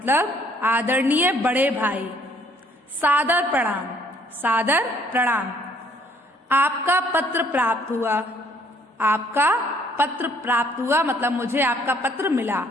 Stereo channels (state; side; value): normal; both; correlation 0.63